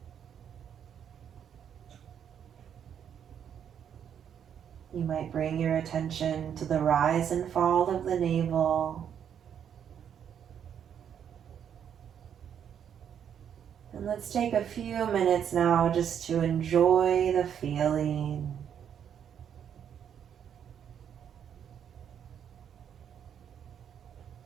You might bring your attention to the rise and fall of the navel. Let's take a few minutes now just to enjoy the feeling.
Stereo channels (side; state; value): left; quieter; 8.6 dB